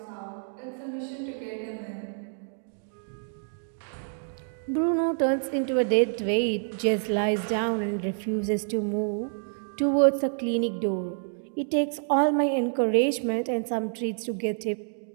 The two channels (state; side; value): silent; left; digital silence